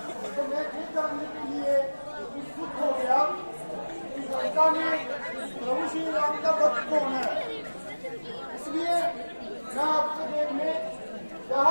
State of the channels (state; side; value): inverted; both; correlation -1.00